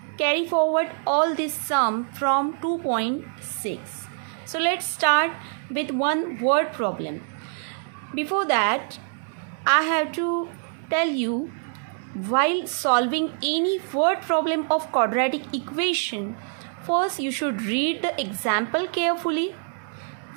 carry forward all this sum from 2.6. So let's start with one word problem. Before that, I have to tell you, while solving any word problem of quadratic equation, first you should read the example carefully,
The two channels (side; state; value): left; silent; 57 dB below the other